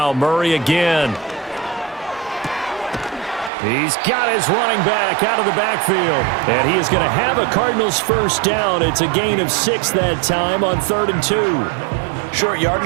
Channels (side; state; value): left; drops out; at 3.5 s